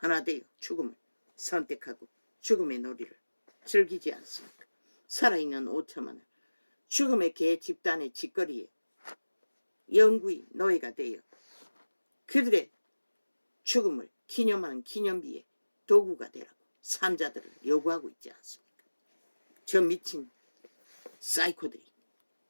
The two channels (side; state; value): both; inverted; correlation -1.00